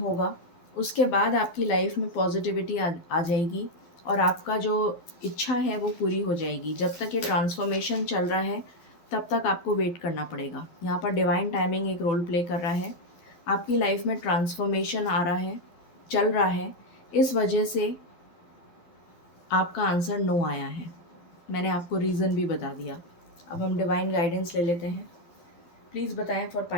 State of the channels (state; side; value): late; right; 12 ms